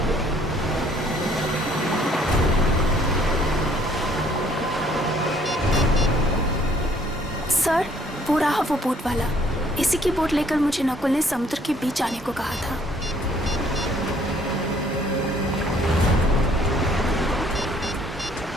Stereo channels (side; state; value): both; normal; correlation 0.62